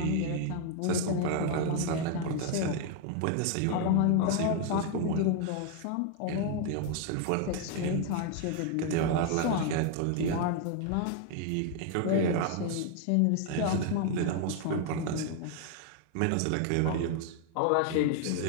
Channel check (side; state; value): both; different; correlation 0.00